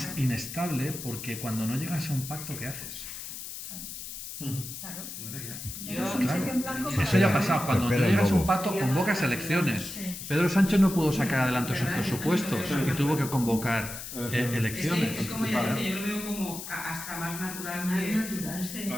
inestable, porque cuando no llegas a un pacto, ¿qué haces? Claro. Yo, Es un cheque en blanco para- Eso ya ha pasado. Cuando tú Espera, llegas a un luego. pacto, convocas elecciones. Sí. Pedro Sánchez no pudo sacar adelante sus presupuestos y tuvo que convocar elecciones. es como ya dice, yo lo veo como hasta más natural Más natural, sí.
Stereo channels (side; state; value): left; noise; hiss, 9 dB below the sound